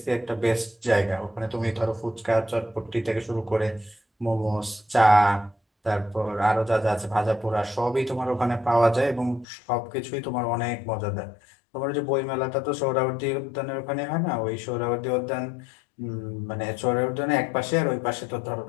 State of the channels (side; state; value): right; drops out; at 9.5 s